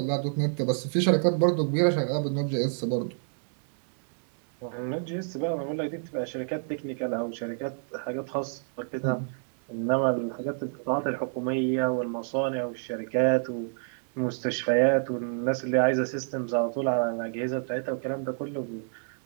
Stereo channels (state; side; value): silent; left; digital silence